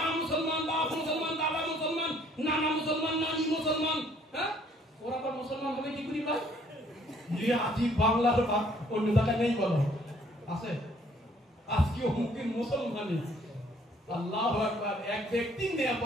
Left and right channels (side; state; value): both; normal; correlation 0.61